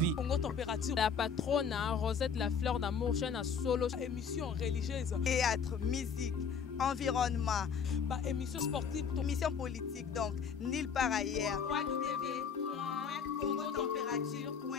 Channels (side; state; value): right; quieter; 6.3 dB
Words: Congo Température. La patronne, Rosette La Fleur d'Amour, chaîne à solo. Émission religieuse. Théâtre, musique, environnement. Bah, émission sportive. Émission politique, donc, nulle part ailleurs.